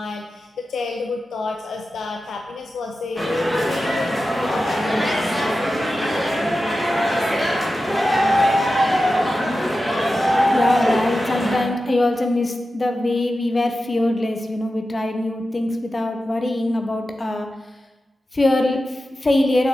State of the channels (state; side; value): normal; both; correlation 0.92